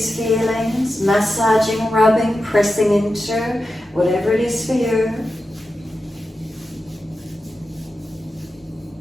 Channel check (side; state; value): both; normal; correlation 0.91